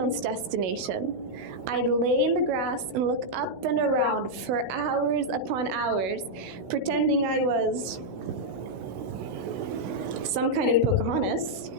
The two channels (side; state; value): left; late; 16 ms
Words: destination. I'd lay in the grass and look up and around for hours upon hours, pretending I was some kind of Pocahontas,